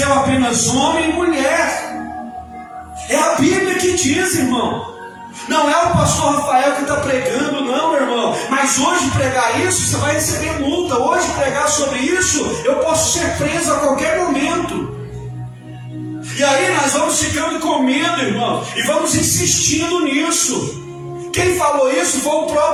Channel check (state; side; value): identical; both; correlation 1.00